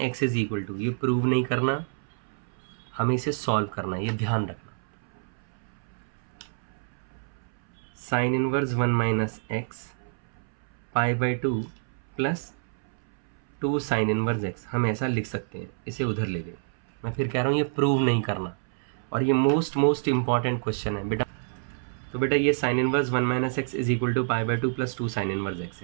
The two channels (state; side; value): silent; left; 59 dB below the other